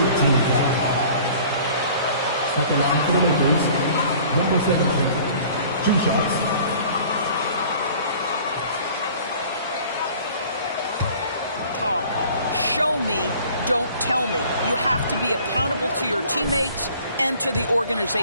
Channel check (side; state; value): both; inverted; correlation -0.50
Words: team foul. At the line for the Lakers, number 17. 2 shots. talk. Show me, don't tell me. You have to be accountable to your teammates and to the